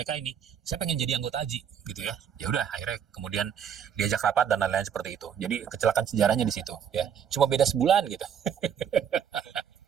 ini, saya pengen jadi anggota Aji, gitu ya. Ya udah, akhirnya kemudian diajak rapat dan lain-lain seperti itu. Jadi kecelakaan sejarahnya di situ, ya. Cuma beda sebulan gitu.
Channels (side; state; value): left; quieter; 8.4 dB